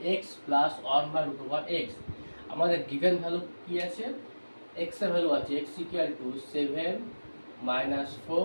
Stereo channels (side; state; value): both; inverted; correlation -1.00